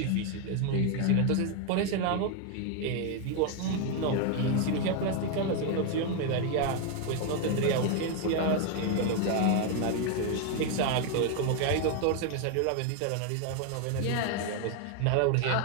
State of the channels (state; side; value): different; both; correlation 0.01